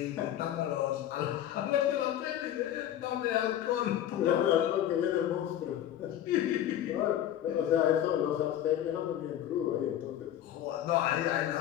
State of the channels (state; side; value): quieter; right; 11.3 dB